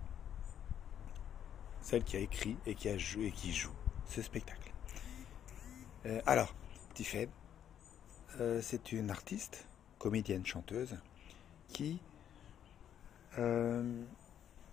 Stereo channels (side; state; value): right; quieter; 9.6 dB